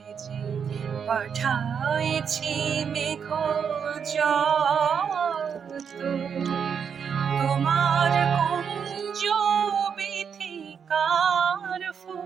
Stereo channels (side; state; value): left; quieter; 7.0 dB